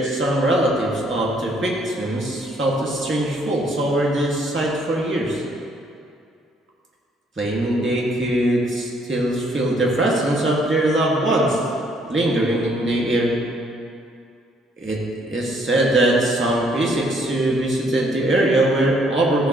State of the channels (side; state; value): both; normal; correlation 0.66